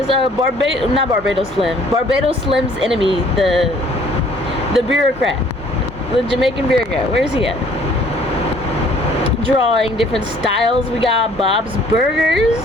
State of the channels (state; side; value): normal; both; correlation 0.57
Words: not Barbados Slim. Barbados Slim's enemy, the bureaucrat. The Jamaican bureaucrat. Where's he at? Drawing different styles. We got Bob's Burgers.